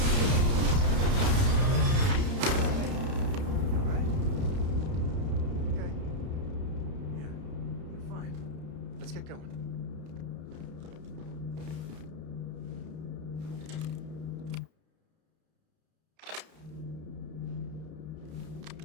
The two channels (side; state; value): left; late; 31 ms